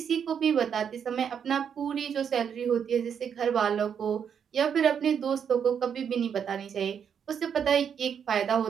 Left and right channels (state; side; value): quieter; left; 7.7 dB